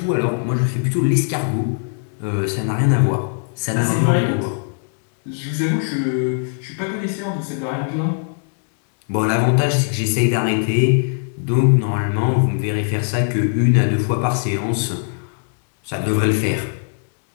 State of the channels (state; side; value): silent; right; digital silence